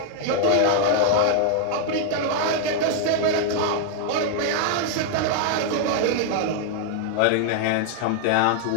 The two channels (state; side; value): different; both; correlation 0.00